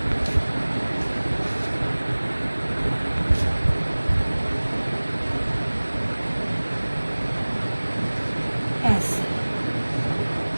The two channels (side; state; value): both; inverted; correlation -1.00